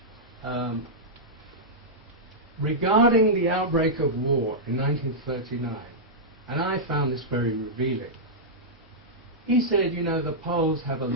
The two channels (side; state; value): both; normal; correlation -0.10